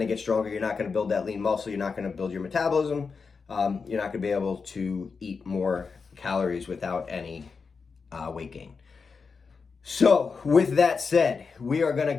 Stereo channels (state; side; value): quieter; right; 5.1 dB